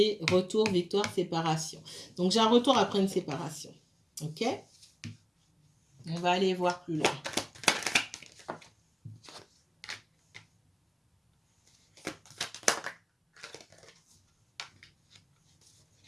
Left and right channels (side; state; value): both; identical; correlation 1.00